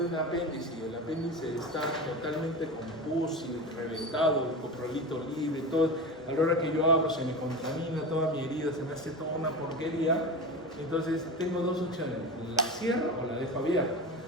un apéndice y el apéndice está totalmente con pus y reventado, el coprolito libre, todo, a la hora que yo abro se me contamina toda mi herida, se me hace toda una porquería. Entonces tengo dos opciones, la cierro o la dejo abierta.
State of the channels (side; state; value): right; noise; hum, 27 dB below the sound